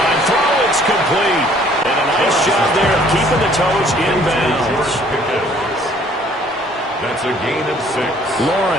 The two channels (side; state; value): both; normal; correlation 0.58